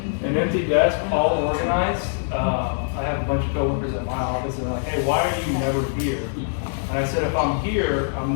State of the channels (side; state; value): right; silent; digital silence